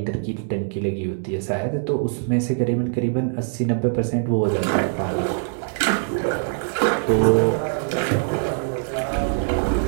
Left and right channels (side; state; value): left; silent; digital silence